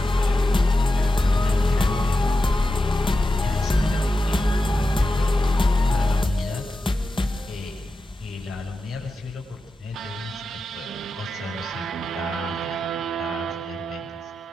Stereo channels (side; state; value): both; normal; correlation 0.91